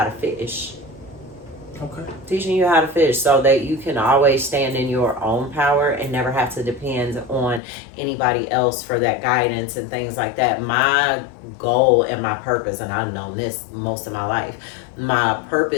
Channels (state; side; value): drops out; right; at 7.6 s